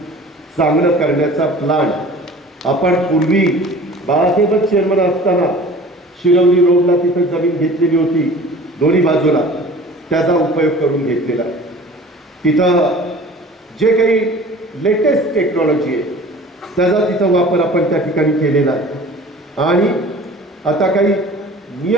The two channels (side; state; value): both; normal; correlation 0.44